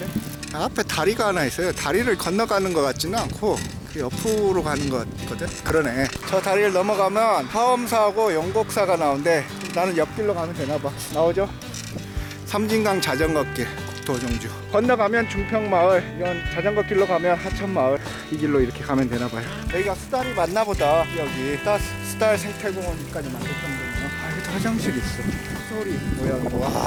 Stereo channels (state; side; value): identical; both; correlation 1.00